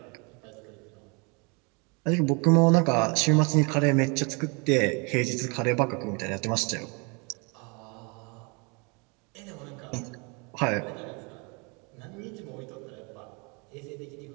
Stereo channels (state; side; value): quieter; left; 31.5 dB